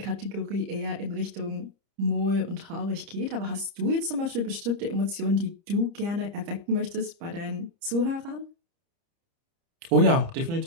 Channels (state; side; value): late; left; 30 ms